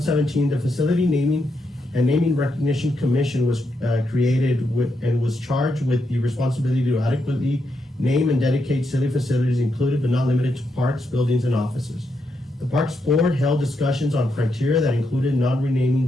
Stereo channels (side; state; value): both; normal; correlation 0.81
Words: the Facility Naming and Naming Recognition Commission was created and was charged with the responsibility to adequately name and dedicate city facilities included but not limited to parks, buildings, and offices. The Parks Board held discussions on criteria that included